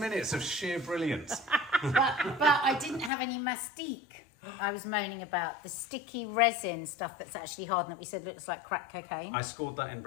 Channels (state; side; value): drops out; right; at 3.1 s